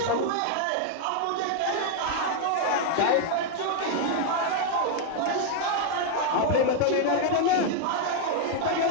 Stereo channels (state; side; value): different; both; correlation 0.00